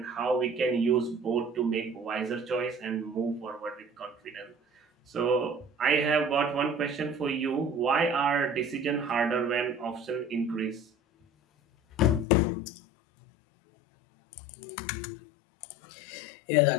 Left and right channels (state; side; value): drops out; right; at 12.2 s